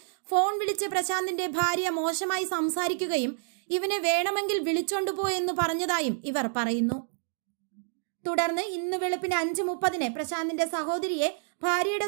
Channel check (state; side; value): silent; left; digital silence